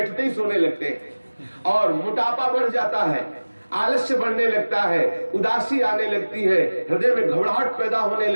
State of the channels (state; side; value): inverted; both; correlation -1.00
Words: ही सोने लगते हैं और मोटापा बढ़ जाता है, आलस्य बढ़ने लगता है, उदासी आने लगती है, हृदय में घबराहट पैदा होने